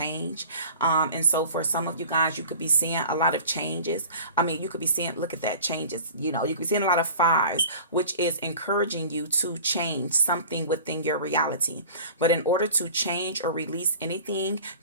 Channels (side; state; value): both; inverted; correlation -0.41